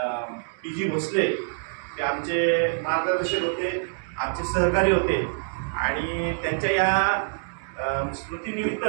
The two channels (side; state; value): left; silent; digital silence